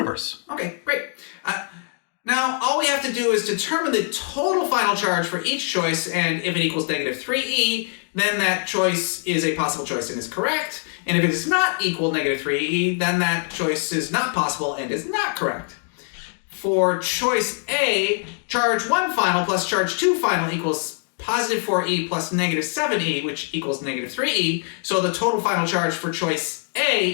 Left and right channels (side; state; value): right; silent; 57 dB below the other